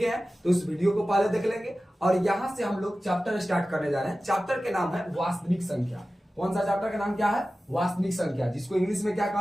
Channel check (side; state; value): both; normal; correlation 0.95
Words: हैं तो इस वीडियो को पहले देख लेंगे। और यहां से हम लोग चैप्टर स्टार्ट करने जा रहे हैं। चैप्टर के नाम है वास्तविक संख्या। कौन सा चैप्टर का नाम क्या है? वास्तविक संख्या, जिसको इंग्लिश में क्या